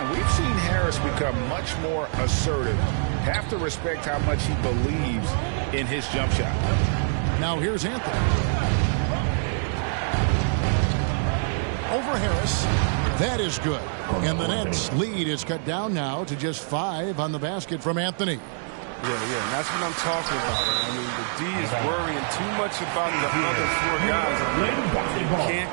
we've seen Harris become much more assertive. Have to respect how much he believes in his jump shot. Now here's Anthony. Over Harris. That is good. And the Nets lead is cut down now to just 5 on the basket from Anthony. Yeah, and that's what I'm talking about. I mean, the D is worrying too much about the other 4 guys. You can't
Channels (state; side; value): silent; left; digital silence